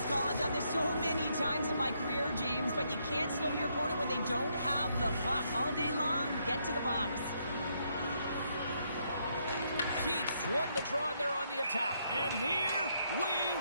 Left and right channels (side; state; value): both; inverted; correlation -0.75